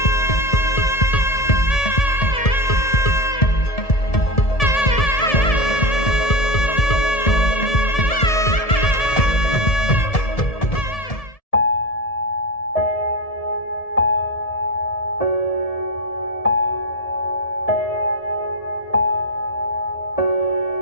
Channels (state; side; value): late; right; 1.7 ms